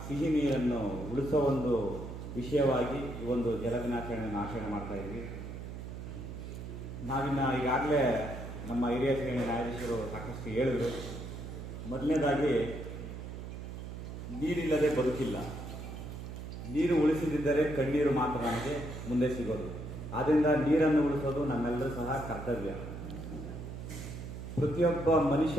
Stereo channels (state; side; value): noise; right; hum, 9 dB below the sound